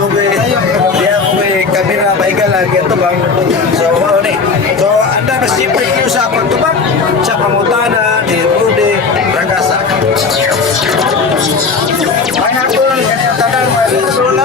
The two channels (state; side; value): quieter; right; 4.7 dB